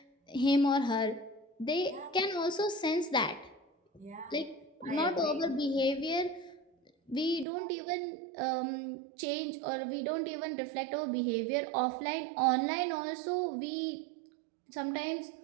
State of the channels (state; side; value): drops out; left; at 7.5 s